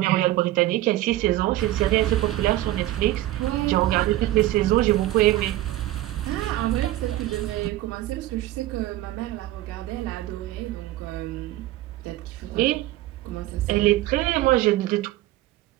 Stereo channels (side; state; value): left; quieter; 15.6 dB